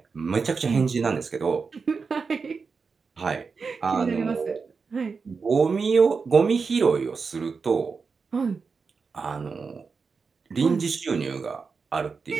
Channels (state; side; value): quieter; left; 5.0 dB